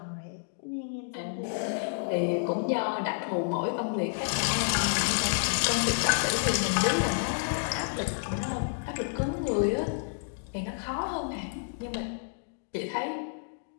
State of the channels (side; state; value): right; silent; digital silence